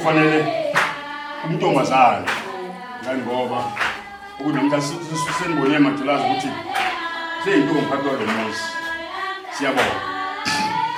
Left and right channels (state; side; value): identical; both; correlation 1.00